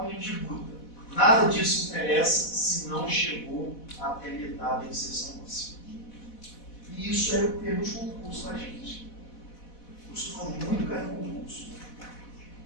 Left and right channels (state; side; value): late; right; 4.1 ms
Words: milímetros de guta. Nada disso interessa se não chegou até metade da inserção óssea. E isso é o termo de concurso, tá, gente? Costuma muito cair no concurso.